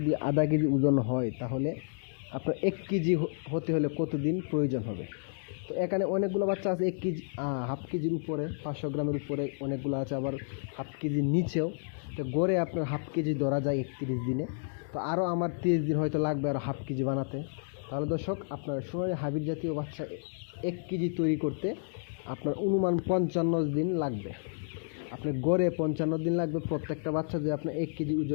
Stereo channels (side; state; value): right; silent; digital silence